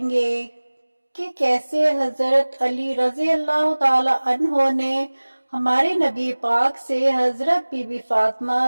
گے کہ کیسے حضرت علی رضی اللہ تعالی عنہ نے ہمارے نبی پاک سے حضرت بی بی فاطمہ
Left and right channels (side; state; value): both; inverted; correlation -1.00